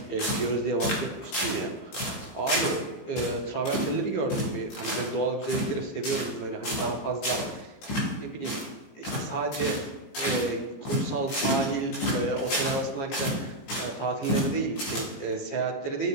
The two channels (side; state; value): right; late; 18 ms